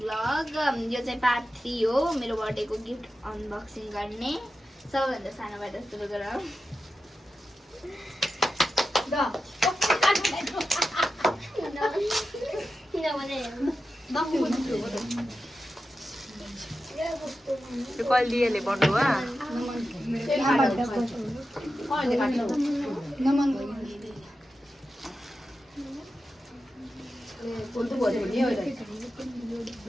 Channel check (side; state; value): both; normal; correlation 0.91